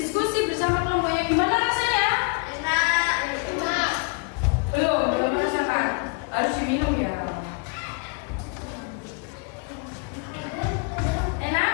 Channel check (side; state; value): right; quieter; 33.3 dB